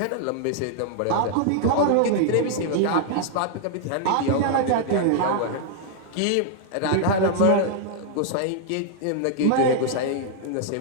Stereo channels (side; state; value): both; different; correlation 0.00